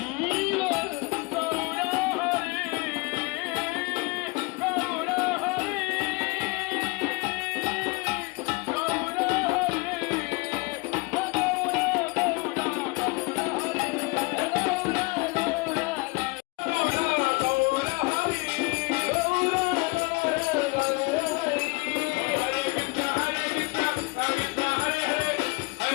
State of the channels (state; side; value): quieter; right; 27.0 dB